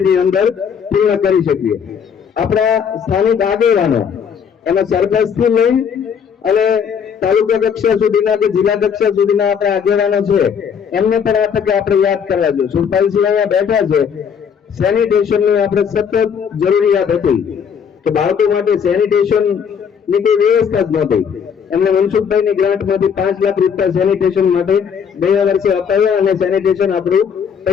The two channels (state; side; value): quieter; right; 7.1 dB